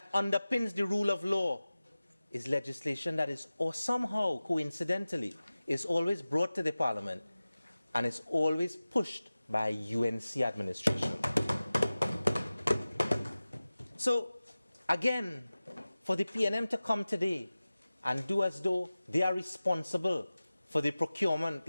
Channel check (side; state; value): both; inverted; correlation -0.96